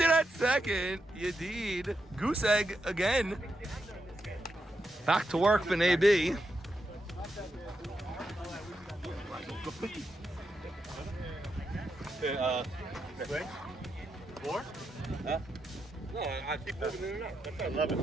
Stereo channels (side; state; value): both; normal; correlation 0.84